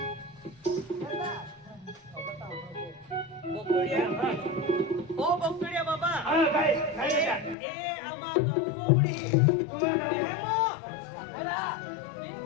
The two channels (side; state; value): right; drops out; at 7.6 s